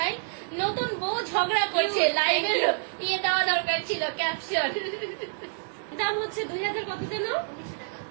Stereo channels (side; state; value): left; silent; digital silence